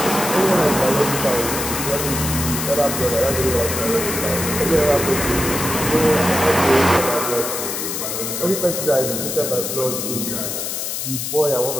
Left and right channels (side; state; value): left; noise; hiss, 4 dB below the sound